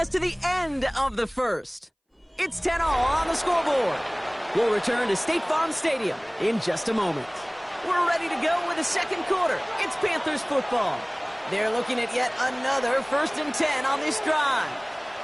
to the end of the first. It's 10-all on the scoreboard. We'll return to State Farm Stadium in just a moment. We're ready to go with the second quarter. It's Panthers football. They're looking at yet another 1st and 10 on this drive.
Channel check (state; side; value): identical; both; correlation 1.00